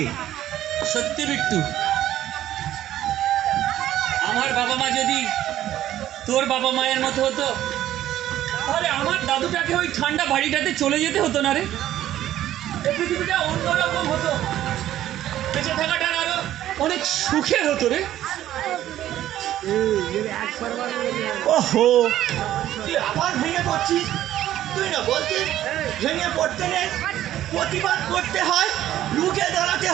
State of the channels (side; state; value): left; quieter; 12.8 dB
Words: সত্যি বিট্টু, আমার বাবা মা যদি তোর বাবা মায়ের মতো হতো, তাহলে আমার দাদুটাকে ওই ঠান্ডা বাড়িটাতে চলে যেতে হতো না রে। এই পৃথিবীটা অন্যরকম হতো, বেঁচে থাকাটা আরো অনেক সুখের হতো রে। ওহো, তুই আবার ভেঙে পড়ছিস। তুই না বলছিস ভেঙে পড়তে নেই, প্রতিবাদ করতে হয়, রুখে দাঁড়াতে